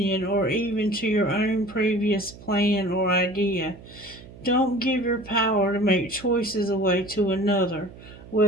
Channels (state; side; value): noise; right; hum, 19 dB below the sound